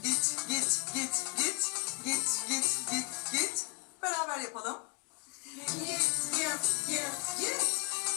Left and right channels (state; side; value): quieter; right; 34.8 dB